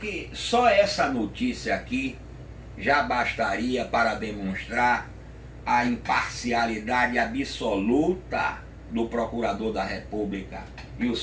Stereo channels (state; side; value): identical; both; correlation 1.00